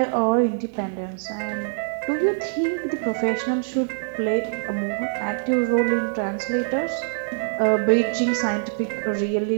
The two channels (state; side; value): silent; left; digital silence